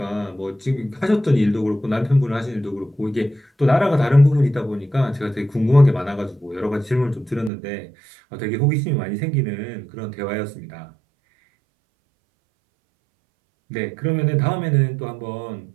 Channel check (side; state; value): left; drops out; at 7.5 s